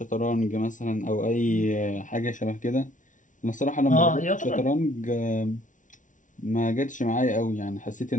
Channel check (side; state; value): right; late; 0.37 ms